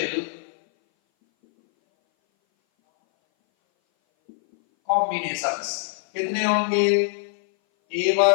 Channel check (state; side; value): silent; right; 59 dB below the other